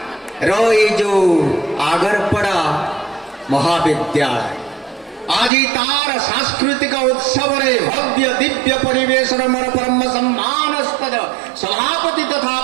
रो ये जो आगरपड़ा महाविद्यालय आज तार सांस्कृतिक उत्सव रे भव्य दिव्य परिवेशन मोर परम सम्मानस्पद सभापति तथा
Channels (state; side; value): drops out; left; at 5.5 s